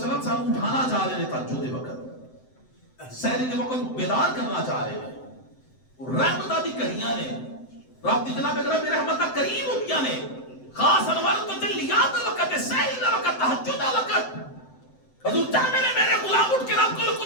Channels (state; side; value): late; right; 7.8 ms